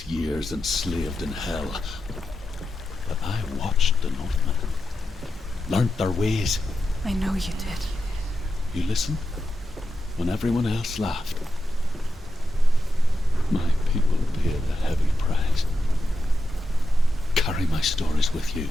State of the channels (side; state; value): both; normal; correlation 0.88